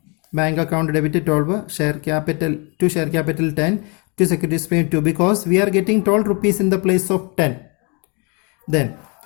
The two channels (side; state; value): right; quieter; 33.1 dB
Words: Bank account debit 12, share capital to share capital 10, to securities premium 2, because we are getting 12 rupees in the place of 10. Then